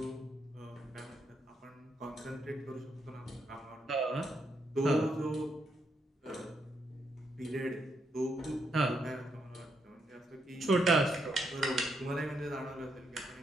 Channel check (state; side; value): normal; both; correlation 0.78